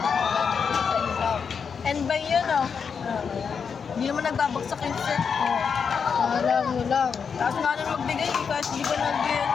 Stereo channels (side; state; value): right; quieter; 6.3 dB